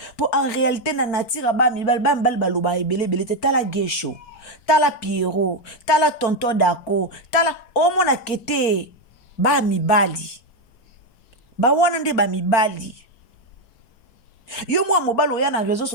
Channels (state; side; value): late; right; 4.4 ms